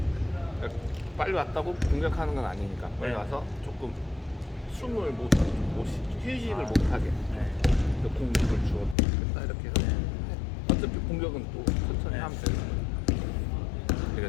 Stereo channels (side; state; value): right; drops out; at 9.0 s